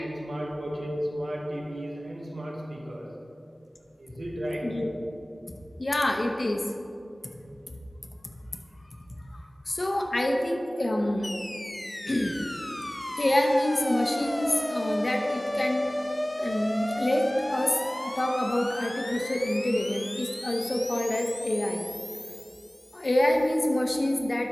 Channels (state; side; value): normal; both; correlation 0.98